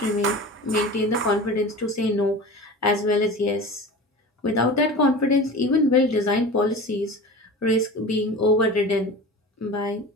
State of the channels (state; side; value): normal; both; correlation 0.34